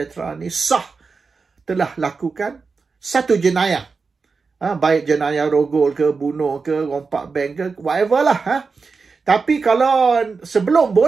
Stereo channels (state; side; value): quieter; left; 4.7 dB